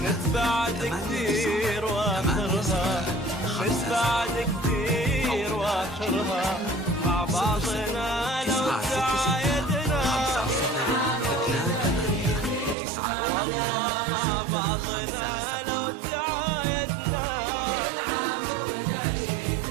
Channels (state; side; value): drops out; left; at 12.8 s